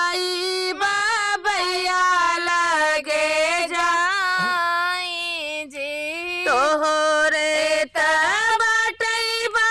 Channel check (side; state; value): both; identical; correlation 1.00